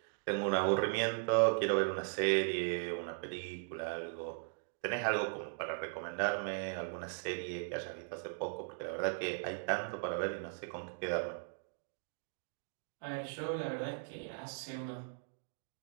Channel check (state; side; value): silent; left; digital silence